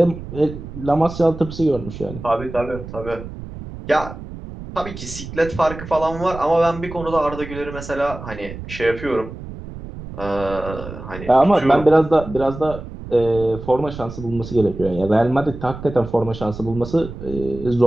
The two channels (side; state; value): right; noise; rumble, 12 dB below the sound